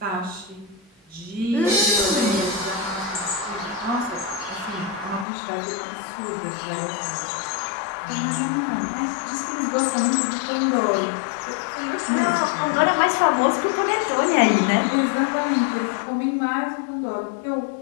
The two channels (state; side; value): drops out; right; at 5.2 s